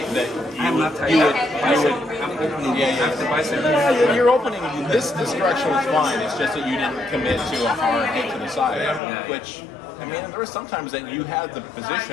that I'm not tight. you would I'm opening. After bicep. Your opening, this direction was fine. It's just that you didn't commit to a hard hit to the side, which, I mean, there were sometimes that you had the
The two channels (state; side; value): drops out; right; at 9.0 s